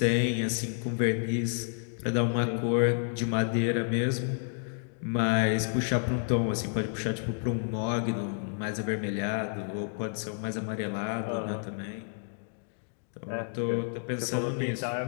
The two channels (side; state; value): right; silent; digital silence